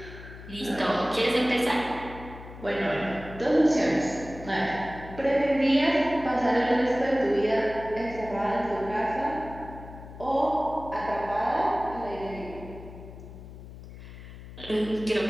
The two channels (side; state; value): left; noise; hum, 15 dB below the sound